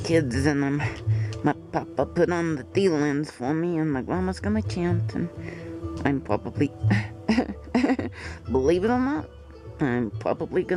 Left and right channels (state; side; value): identical; both; correlation 1.00